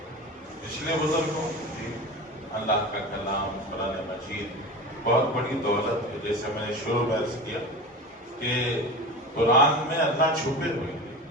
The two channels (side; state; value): both; normal; correlation 0.30